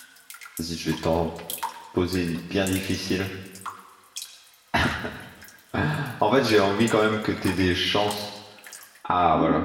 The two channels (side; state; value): both; identical; correlation 1.00